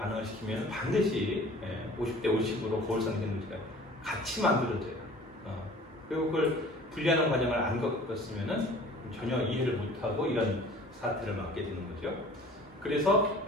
시키면 반드시 50대 50으로 거울상 이성질체가 같이 만들어져요. 그리고 그걸 분리하는 과정을 안 겪었으면 전혀 이해를 못하고 이런 사태를 맞게 되는 거죠. 그래서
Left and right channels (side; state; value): both; normal; correlation 0.47